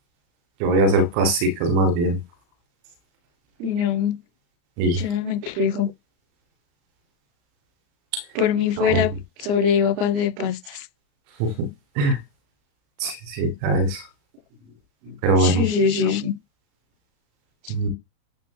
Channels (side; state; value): left; late; 35 ms